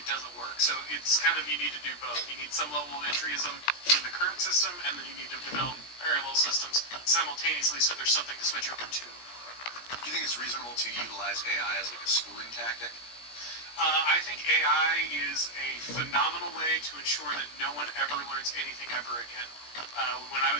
doesn't work. So it's you need to do both. You need some level of entryism in the current system, and then you need to develop parallel systems simultaneously so there's something to switch over to. Do you think it's reasonable use AI as like a schooling tactic? I think AI is a phenomenal way to ensure that no one ever learns anything ever again. When I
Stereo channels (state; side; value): late; right; 17 ms